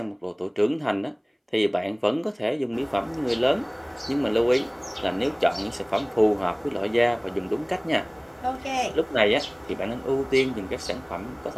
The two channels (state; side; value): identical; both; correlation 1.00